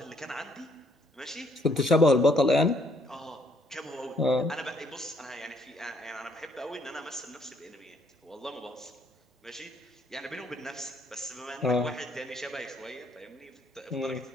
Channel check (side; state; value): both; normal; correlation 0.67